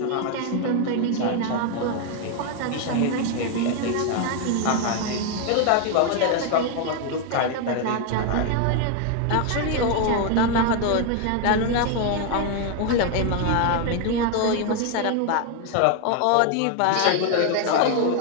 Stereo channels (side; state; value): both; different; correlation 0.01